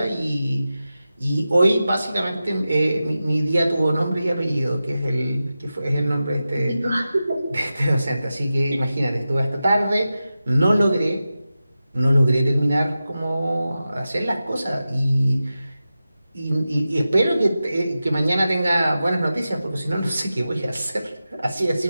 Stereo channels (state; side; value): inverted; both; correlation -0.93